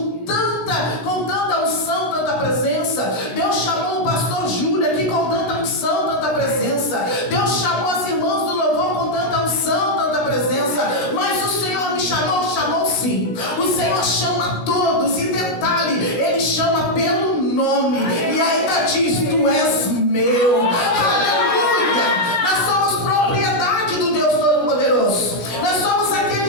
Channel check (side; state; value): right; late; 16 ms